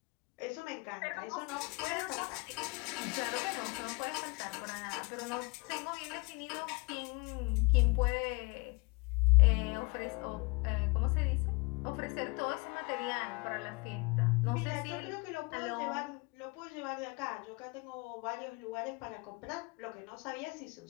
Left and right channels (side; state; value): right; quieter; 27.6 dB